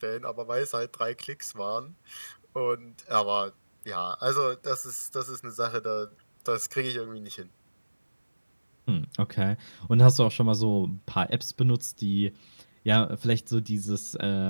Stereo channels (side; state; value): both; inverted; correlation -1.00